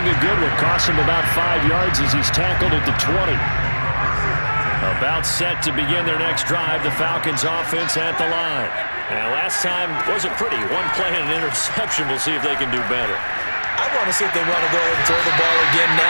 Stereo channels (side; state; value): both; inverted; correlation -1.00